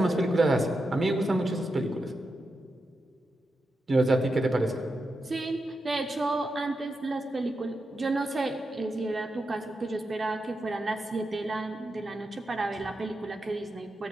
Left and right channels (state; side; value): normal; both; correlation 0.88